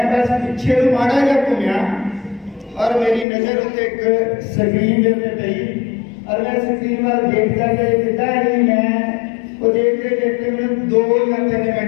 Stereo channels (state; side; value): drops out; right; at 3.2 s